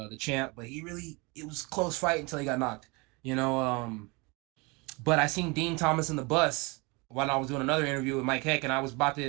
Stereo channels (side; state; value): left; quieter; 27.5 dB